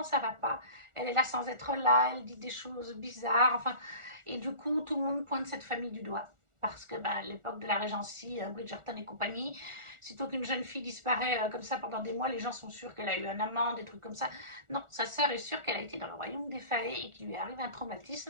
ça ne va pas. Elle est là sans être là, elle dit des choses bizarres. Enfin, et du coup, tout le monde pointe cette famille du doigt. Parce que à l'époque de la Régency, Bridgerton et compagnie, sitôt qu'une jeune fille disparaît comme ça pendant des mois, les gens sont sûrs qu'elle a eu un amant, des trucs comme ça. Non, sa sœur est sûre qu'elle a été dans le royaume des faées et qu'il lui est arrivé un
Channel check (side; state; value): left; late; 1.4 ms